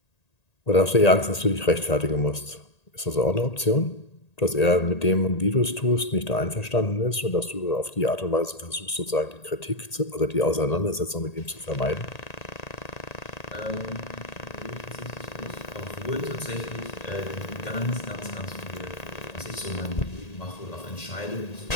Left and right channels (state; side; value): late; right; 1.8 ms